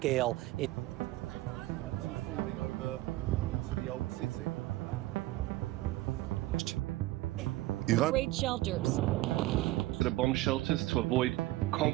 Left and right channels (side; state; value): left; quieter; 17.6 dB